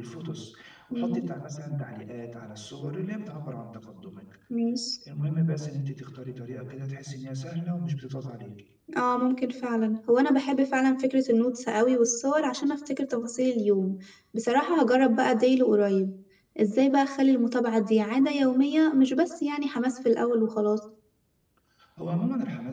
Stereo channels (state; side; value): identical; both; correlation 1.00